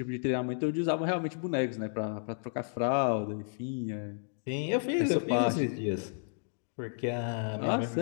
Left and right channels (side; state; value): right; silent; digital silence